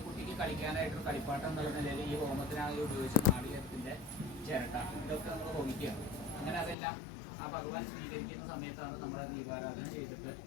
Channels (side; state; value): right; drops out; at 6.8 s